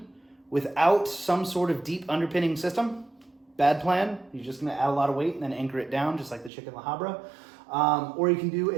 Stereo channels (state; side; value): drops out; left; at 6.5 s